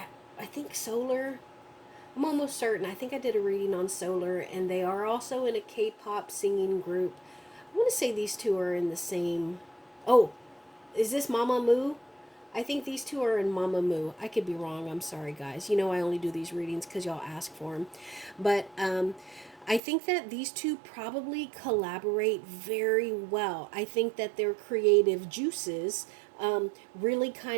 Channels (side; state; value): left; drops out; at 19.8 s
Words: I think Solar, I'm almost certain. I think I did a reading on Solar, and they are also in a K-pop singing group. I want to say these two are in the same. Oh, is this Mama Moo? I think these two are in Mamamoo. I could be wrong. I'm sorry, guys. You know I only do these readings because y'all ask for them. But I think that these two probably collaborate very well. I think that their creative juices really